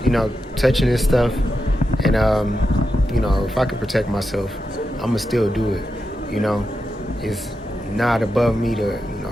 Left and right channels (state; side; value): normal; both; correlation 0.88